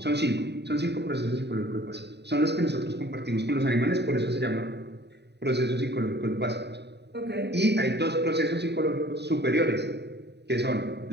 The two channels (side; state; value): left; late; 0.49 ms